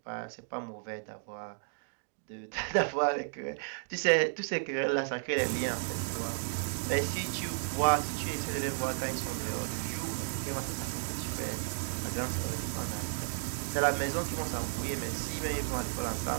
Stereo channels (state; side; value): silent; left; digital silence